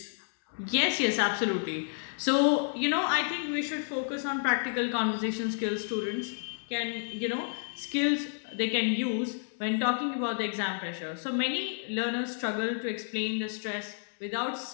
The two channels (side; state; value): right; silent; digital silence